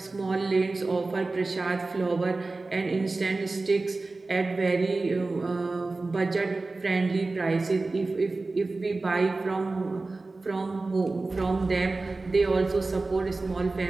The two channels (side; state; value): left; quieter; 3.4 dB